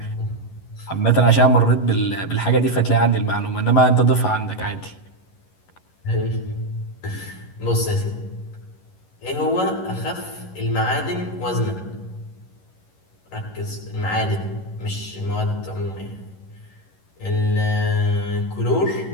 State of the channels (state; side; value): late; right; 11 ms